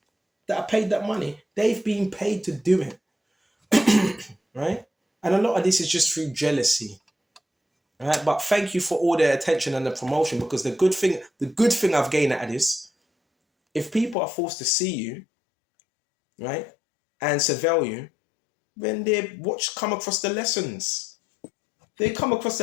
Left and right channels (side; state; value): right; drops out; at 14.2 s